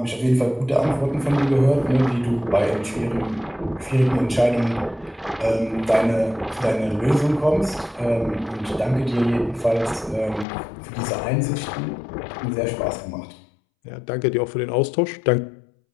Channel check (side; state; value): right; drops out; at 10.5 s